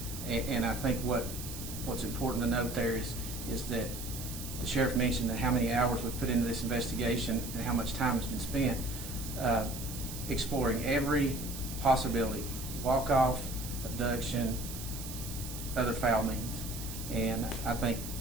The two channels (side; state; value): right; noise; hiss, 10 dB below the sound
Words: and I think what's important to note there is that the sheriff mentioned that how many hours we've put into this investigation and how much time has been spent exploring every possibility: walk-off, abduction, other foul means. And I think